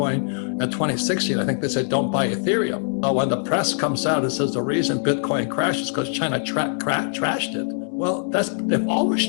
And 2016, I think they said, don't buy Ethereum. When the press comes out and says the reason Bitcoin crashed is because China trashed it. Well, they've always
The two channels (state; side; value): silent; right; 64 dB below the other